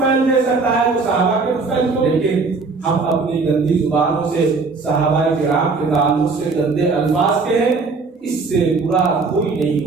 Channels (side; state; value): left; quieter; 4.2 dB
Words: دے سکتا ہے تو صحابہ کے طفیل کو۔ لیکن ہم اپنی گندی زبانوں سے صحابہ کرام کے تعلق سے گندے الفاظ کے ہیں، اس سے برا کوئی نہیں